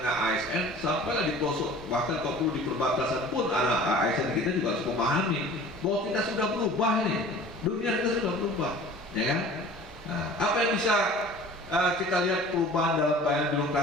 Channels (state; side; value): normal; both; correlation 0.44